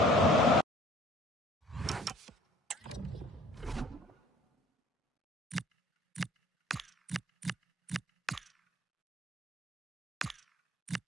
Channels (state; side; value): normal; both; correlation 0.51